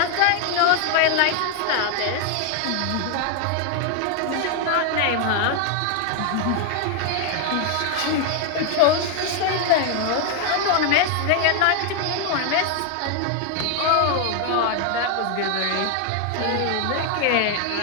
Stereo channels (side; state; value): both; different; correlation 0.00